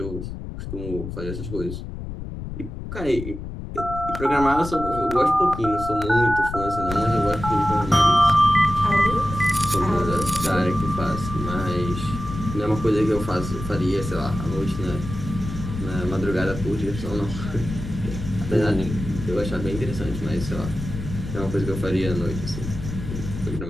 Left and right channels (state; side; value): noise; left; rumble, 8 dB below the sound